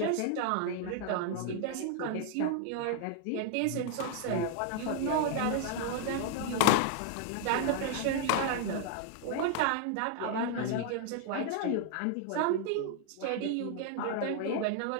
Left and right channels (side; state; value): both; different; correlation 0.00